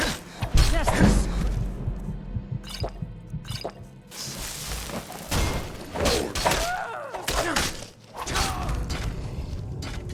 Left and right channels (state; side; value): identical; both; correlation 1.00